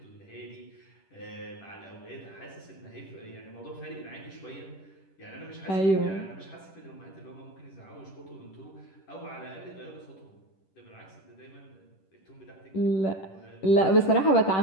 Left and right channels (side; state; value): right; late; 10 ms